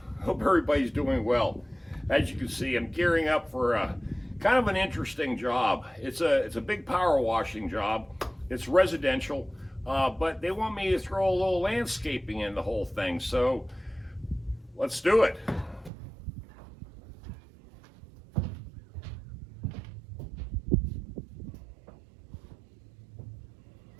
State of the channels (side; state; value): left; drops out; at 15.9 s